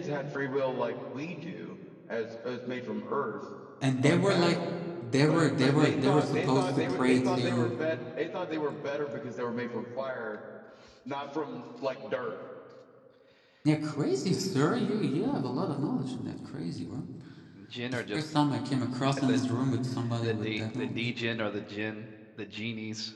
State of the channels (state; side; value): identical; both; correlation 1.00